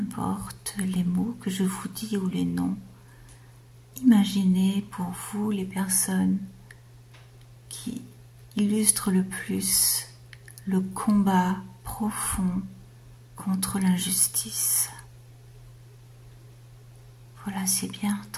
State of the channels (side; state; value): both; identical; correlation 1.00